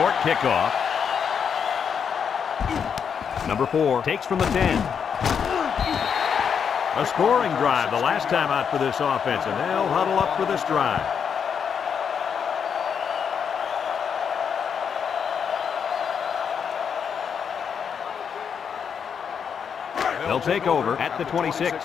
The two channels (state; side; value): quieter; right; 7.1 dB